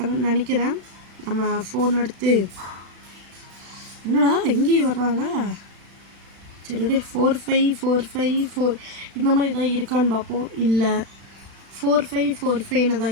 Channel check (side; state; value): left; late; 35 ms